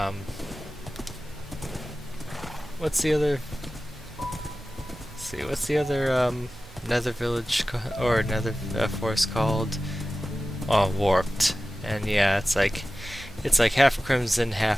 what's the other? Let's see, what's the other Nether village or Nether forest called? Oh, Warped. And yeah, it's like half Crimson,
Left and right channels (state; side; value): noise; right; hum, 22 dB below the sound